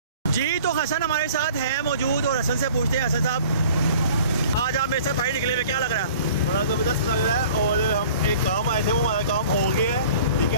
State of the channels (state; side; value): inverted; both; correlation -0.48